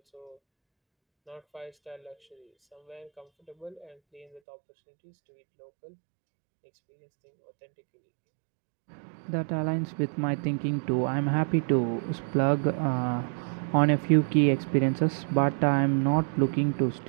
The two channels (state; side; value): drops out; left; at 4.4 s